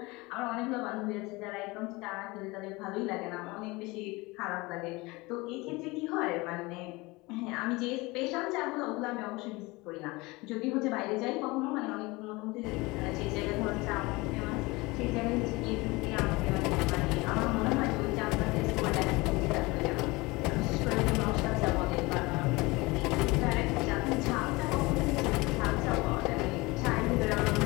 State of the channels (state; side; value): quieter; right; 23.2 dB